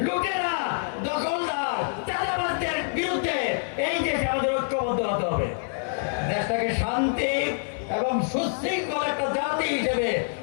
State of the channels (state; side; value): silent; right; 58 dB below the other